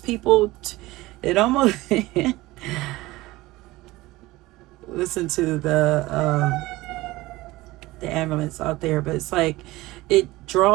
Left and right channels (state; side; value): quieter; left; 19.1 dB